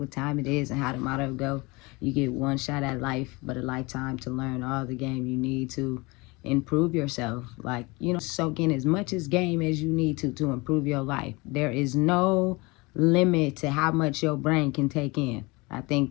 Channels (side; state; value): right; quieter; 25.0 dB